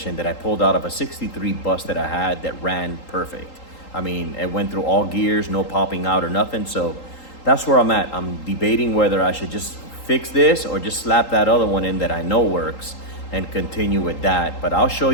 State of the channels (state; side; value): late; right; 3.8 ms